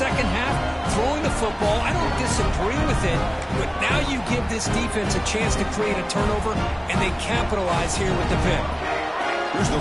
half, throwing the football. I don't disagree with it, but now you give this defense a chance to create a turnover, and they capitalize here with the pick. Here's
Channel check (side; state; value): both; identical; correlation 1.00